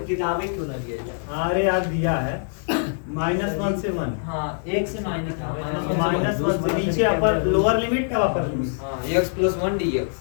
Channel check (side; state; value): right; silent; digital silence